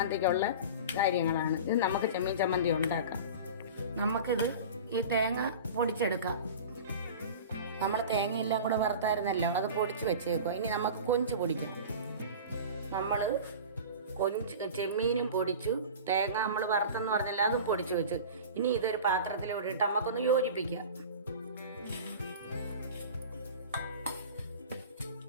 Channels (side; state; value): both; inverted; correlation -0.34